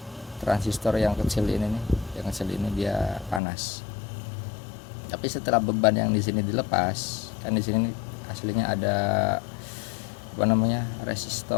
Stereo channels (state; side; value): drops out; right; at 3.4 s